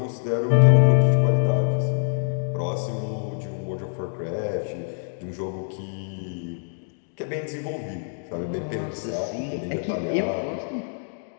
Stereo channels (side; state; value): right; silent; digital silence